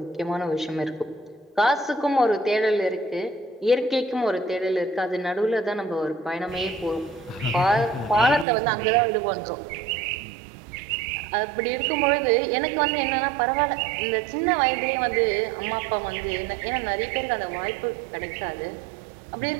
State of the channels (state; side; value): drops out; left; at 8.5 s